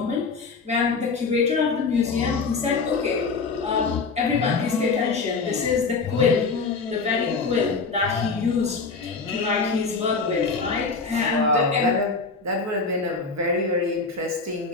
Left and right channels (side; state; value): right; quieter; 4.5 dB